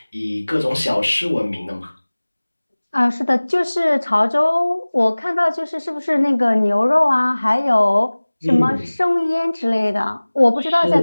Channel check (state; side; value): inverted; both; correlation -1.00